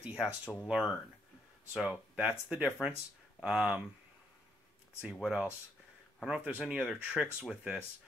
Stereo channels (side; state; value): both; normal; correlation 0.74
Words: has to learn. So that's the difference. Let's see what else. I don't know if there's any other tricks with this.